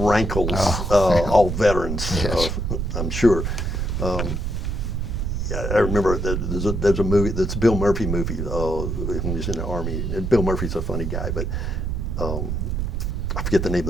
all veterans, yes. I'm sure. I remember there's a movie, that's a Bill Murphy movie, when he was in the Army. And Bill Murphy's a funny guy, but I forget the name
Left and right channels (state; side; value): noise; right; rumble, 1 dB below the sound